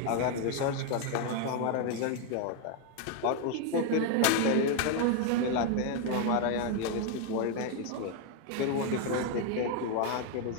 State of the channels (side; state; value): both; different; correlation 0.01